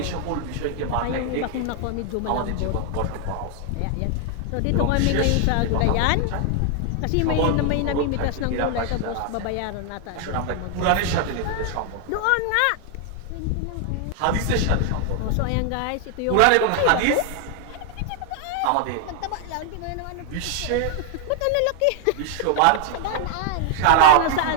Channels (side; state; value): both; different; correlation 0.00